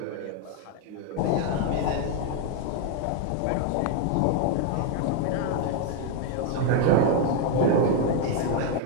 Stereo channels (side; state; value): both; different; correlation 0.01